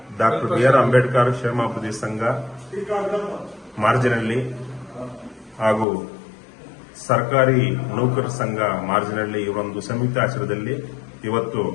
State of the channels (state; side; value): drops out; right; at 5.9 s